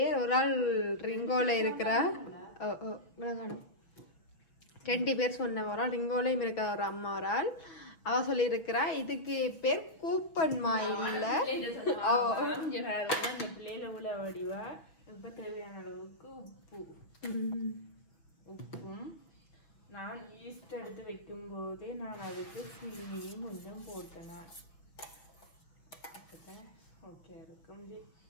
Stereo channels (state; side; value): late; right; 6.3 ms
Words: ஒரு ஆள் ரிங்கோல இருக்கிறா, 2 பேர் சொன்ன ஒரு ஆள் ரிங்கோலையும் இருக்கிற ஒரு அம்மா, ஒரு ஆள் அவ சொல்லி இருக்கிறா இதுக்கு பேர் கூப்பன் மா இல்ல. வடிவா இப்ப தேவையான அளவுக்கு உப்பும் நான் ஈஸ்ட் எடுத்து வைக்கும் போதே நான் அதுக்கு சீனியும் கொஞ்சம் போட்டேன். ஓகே இருக்கும்.